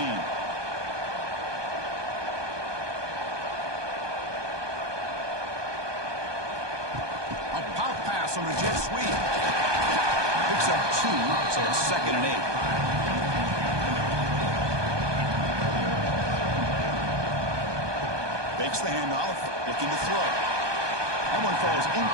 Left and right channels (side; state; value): left; late; 1.2 ms